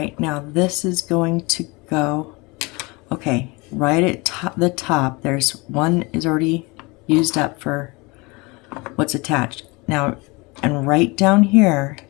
now this is going to go, okay, right at the top, there's one is already used up for what's attached. Now, and right down here,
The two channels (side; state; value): right; quieter; 25.9 dB